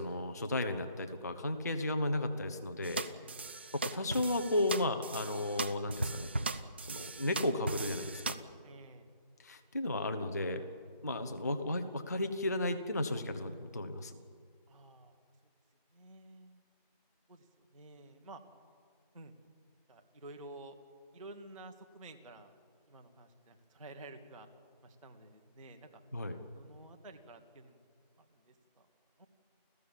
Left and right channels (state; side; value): inverted; both; correlation -0.64